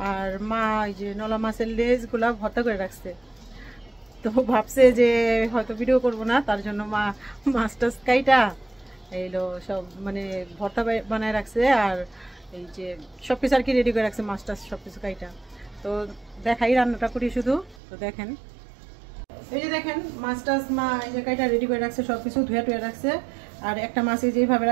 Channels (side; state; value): left; drops out; at 17.8 s